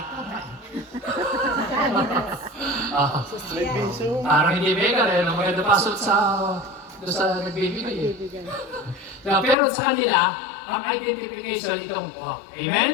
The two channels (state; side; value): drops out; right; at 9.6 s